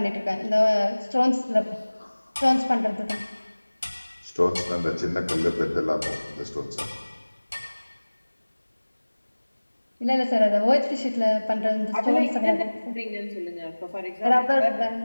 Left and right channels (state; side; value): inverted; both; correlation -1.00